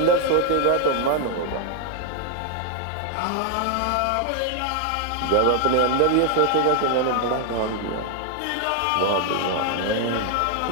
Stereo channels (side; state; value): both; different; correlation 0.00